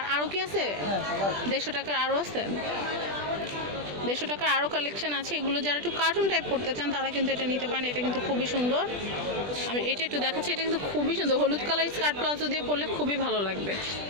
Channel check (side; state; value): left; late; 20 ms